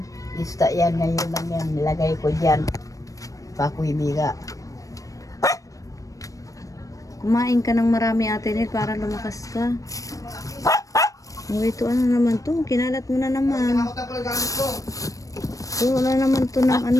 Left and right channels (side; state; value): right; late; 0.16 ms